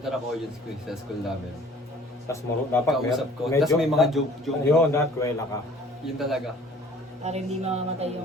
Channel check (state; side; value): normal; both; correlation 0.52